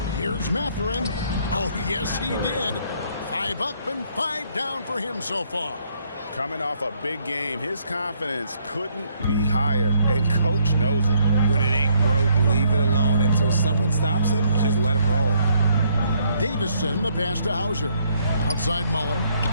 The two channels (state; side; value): inverted; both; correlation -0.68